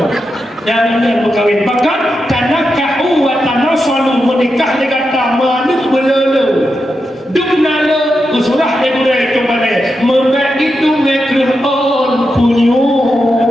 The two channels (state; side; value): normal; both; correlation 0.87